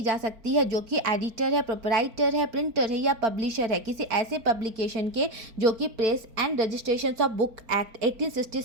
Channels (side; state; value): left; late; 4.4 ms